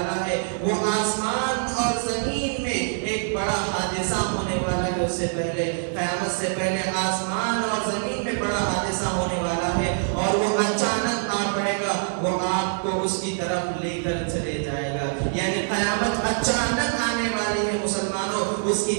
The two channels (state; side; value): silent; left; digital silence